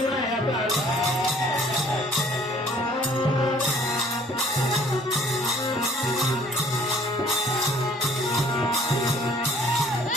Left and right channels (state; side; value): normal; both; correlation 0.56